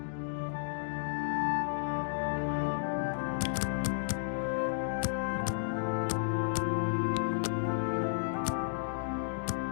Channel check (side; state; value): right; silent; digital silence